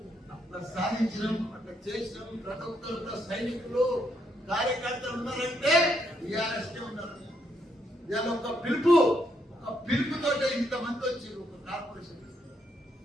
అట్లా సాధించడం, అట్లా చేసినాం. ప్రతి ఒక్కరు సైనికులు కార్యకర్తలు ఉన్నారంటే టీఆర్ఎస్ ఉన్నారు. ఇవాళ ఒక పిలుపుతో ఇంతమంది వచ్చారు. ఒక కార్పొరేషన్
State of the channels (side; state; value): both; normal; correlation 0.75